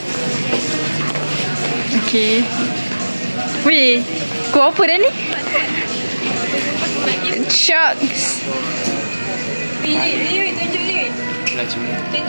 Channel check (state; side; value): inverted; both; correlation -1.00